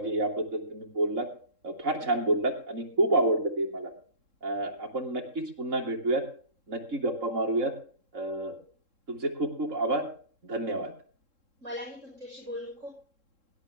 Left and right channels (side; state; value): left; late; 3.7 ms